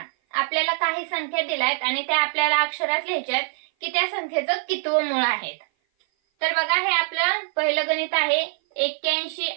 आपल्याला काही संख्या दिल्यात आणि त्या आपल्याला अक्षरात लिहायच्यात की त्या संख्येचं कितवं मूळ आहे. तर बघा हे आपलं पहिलं गणित आहे 81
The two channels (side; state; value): left; silent; 57 dB below the other